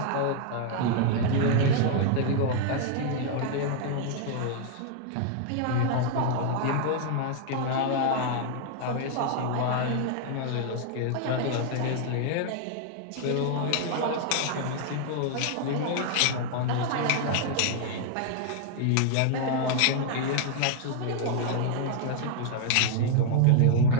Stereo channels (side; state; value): both; different; correlation 0.00